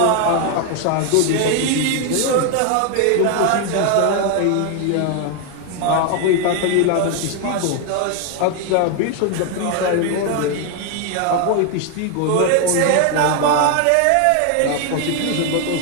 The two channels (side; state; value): both; different; correlation 0.01